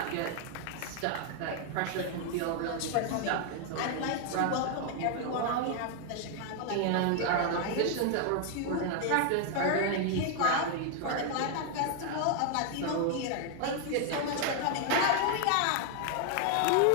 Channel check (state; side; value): different; both; correlation 0.00